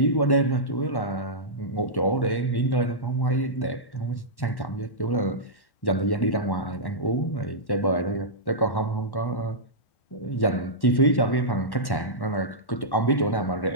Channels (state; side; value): late; right; 1.1 ms